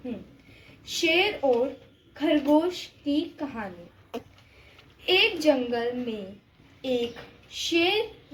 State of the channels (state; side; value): identical; both; correlation 1.00